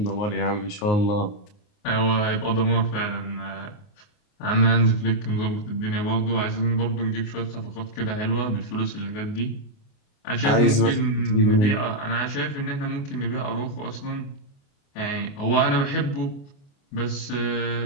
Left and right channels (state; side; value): late; right; 29 ms